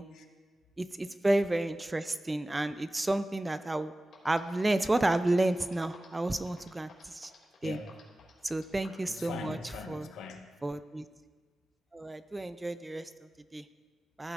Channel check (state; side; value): normal; both; correlation 0.97